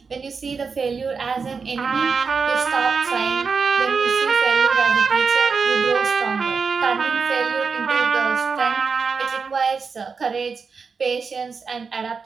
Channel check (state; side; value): quieter; left; 5.2 dB